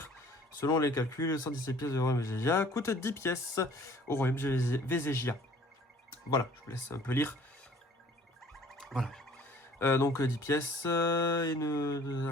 Selon les calculs, 117 pièces de royaume Végésia coûtent 10 pièces au royaume Végésia. Voilà, je vous laisse un peu lire. Voilà. Donc 10 pièces, il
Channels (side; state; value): both; normal; correlation 0.53